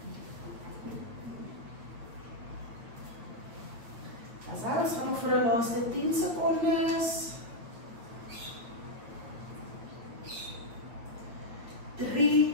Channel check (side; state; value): left; late; 8.6 ms